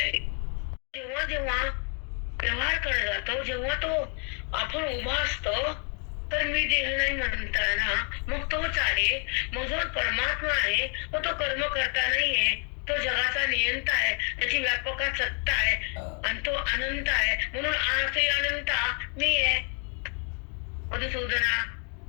जेव्हा जेव्हा व्यवहार करत जातो, जेव्हा तो आपण उभा असतो, तर मी देह नाही म्हणताना मग तोच आहे. मग जो परमात्मा आहे तो कर्म करता नाहीये, तो जगाचा नियंता आहे, त्याची व्यापका सत्ता आहे आणि तो अनंत आहे. म्हणून आजही अनंता मी आहे. मधुसूदना,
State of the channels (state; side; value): quieter; right; 39.1 dB